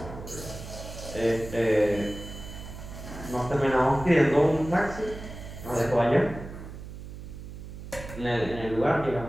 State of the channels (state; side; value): noise; right; hum, 12 dB below the sound